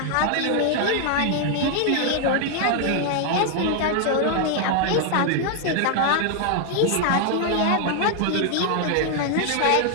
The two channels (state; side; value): different; both; correlation 0.00